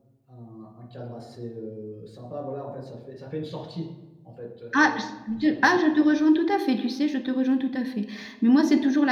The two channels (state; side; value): identical; both; correlation 1.00